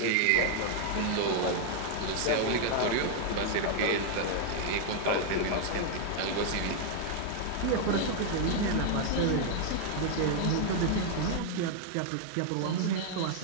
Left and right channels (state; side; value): different; both; correlation 0.00